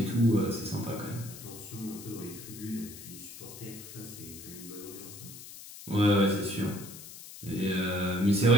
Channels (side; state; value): left; noise; hiss, 14 dB below the sound